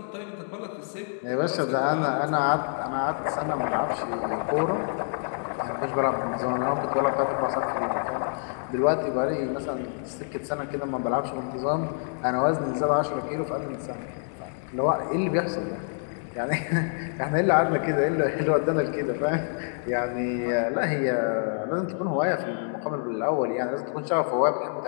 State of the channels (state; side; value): silent; right; digital silence